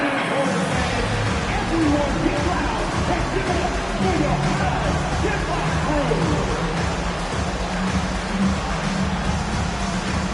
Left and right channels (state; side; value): identical; both; correlation 1.00